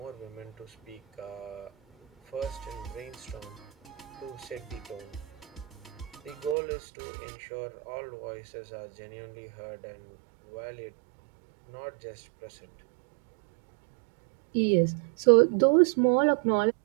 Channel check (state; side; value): drops out; left; at 6.6 s